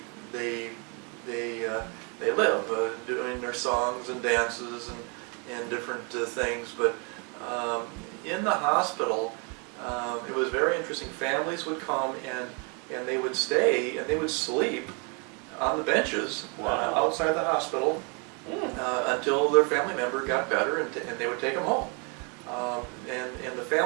they live, doing their songs and dances and different things. But in the hospital, it was very interesting. Families would come and they would stay and they would sleep on the benches outside the hospital until their family member got better, and they would take them home. And the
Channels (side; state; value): left; quieter; 34.7 dB